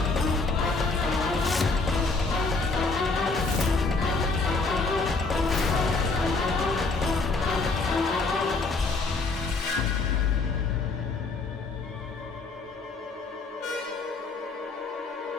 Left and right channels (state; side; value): quieter; right; 3.8 dB